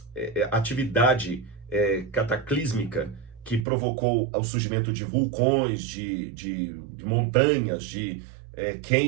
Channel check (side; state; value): left; drops out; at 3.7 s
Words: atividade cataclísmica que provocou o surgimento de vulcões, de montanhas, de